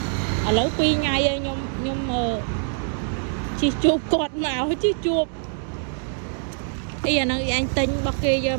ឡូវ2ថ្ងៃហើយខ្ញុំជីជួបគាត់មកជីជួបអីអាហ្នឹងអញទិញរបស់គេយក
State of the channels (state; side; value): silent; left; 63 dB below the other